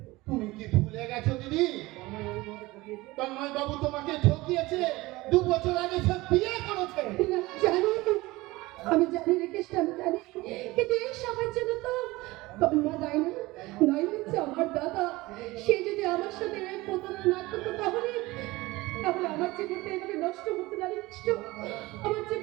তুমি কি ভুলে গেছো দিদি? তন্ময় বাবু তোমাকে ঠকিয়েছে। 2 বছর আগে সে বিয়ে করেছে। না, জানি, আমি জানি রে কৃষ্ণ, আমি জানি, কিন্তু এই সবার জন্য তো তন্ময় দায় না, নয় হচ্ছে আমার দাদা। সে যদি আমার সাথে প্রতারণা না করতো তাহলে আমার জীবনটা এভাবে নষ্ট হতো না রে কৃষ্ণ, আমার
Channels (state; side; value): quieter; left; 20.3 dB